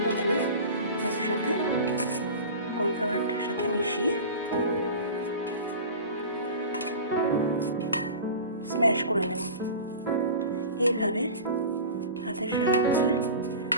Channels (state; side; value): inverted; both; correlation -0.35